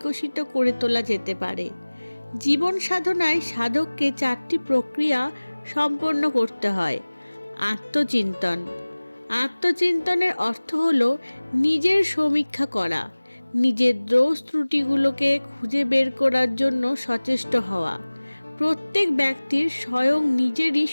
করে তোলা যেতে পারে। জীবন সাধনায় সাধককে 4টি প্রক্রিয়া সম্পন্ন করতে হয়। আত্মচিন্তন। আত্মচিন্তনের অর্থ হল নিজের সমীক্ষা করা, নিজের দোষ ত্রুটিগুলোকে খুঁজে বের করার জন্য সচেষ্ট হওয়া। প্রত্যেক ব্যক্তির স্বয়ং নিজেরই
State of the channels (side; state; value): both; inverted; correlation -1.00